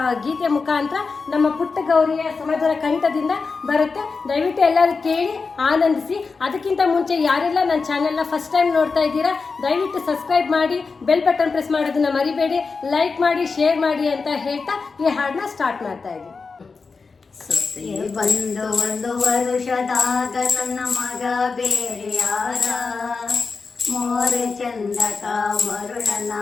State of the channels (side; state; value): right; quieter; 4.6 dB